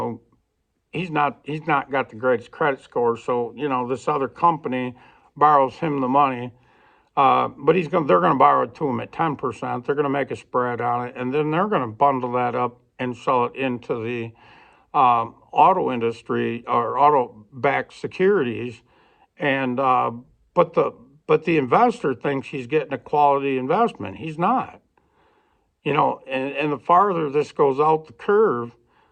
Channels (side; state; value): both; identical; correlation 1.00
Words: he's not got the greatest credit score. So, this other company borrows him the money. But they're going to borrow it to him at 10%. They're going to make a spread on it, and then they're going to bundle that up and sell it into the auto industry or auto-backed securities. And but the investor thinks he's getting a quality investment. He's not. And the farther this goes out the curve,